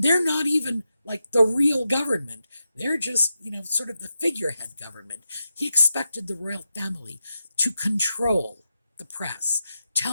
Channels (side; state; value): both; inverted; correlation -0.88